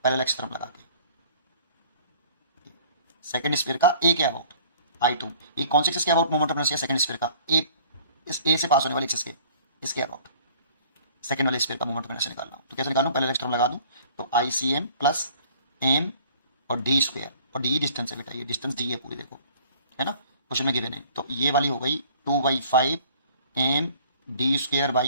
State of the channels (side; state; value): both; inverted; correlation -0.53